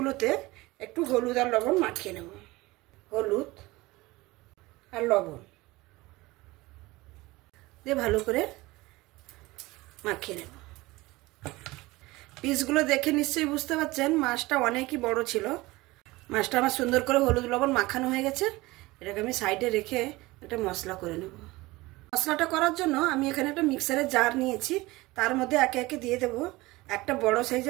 একটু হলুদ আর লবণ মাখিয়ে নেব। হলুদ আর লবণ দিয়ে ভালো করে মাখিয়ে নেব। পিসগুলো দেখে নিশ্চয়ই বুঝতে পারছেন মাছটা অনেকই বড় ছিল। মাছটা আমার সুন্দর করে হলুদ লবণ মাখানো হয়ে গেছে। এটাকে আমি সাইডে রেখে একটা মশলা করে নেব। মশলাটা করার জন্য আমি এখানে একটা মিক্সারের জার নিয়েছি। তার মধ্যে একে একে দিয়ে দেব একটা বড়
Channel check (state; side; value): quieter; left; 20.7 dB